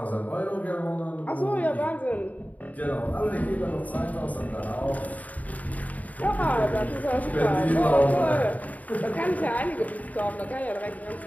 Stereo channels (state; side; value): late; right; 0.073 ms